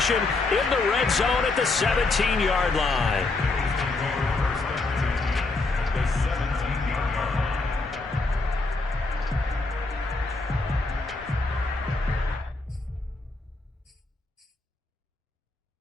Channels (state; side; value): quieter; right; 3.5 dB